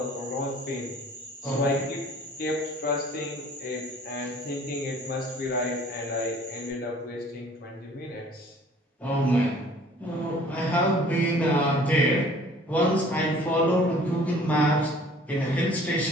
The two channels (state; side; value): normal; both; correlation 0.52